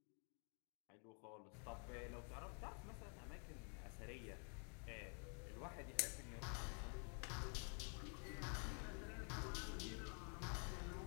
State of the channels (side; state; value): right; quieter; 39.8 dB